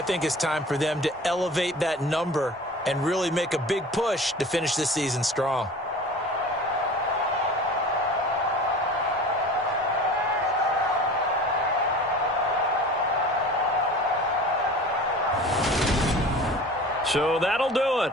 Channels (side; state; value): both; normal; correlation 0.39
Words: think it's time for them to elevate that number and really make a big push to finish this season strong. So that'll do